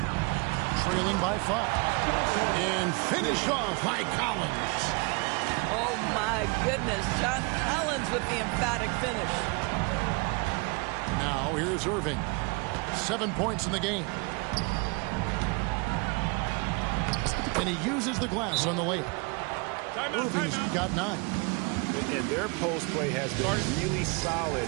Trailing by 5. And finished off by Collins. Oh, my goodness. John Collins with the emphatic finish. Now, here's Irving. 7 points in the game. And he uses the glass on the layup. Irving's got 9. And their post play has been really solid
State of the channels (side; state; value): left; quieter; 30.8 dB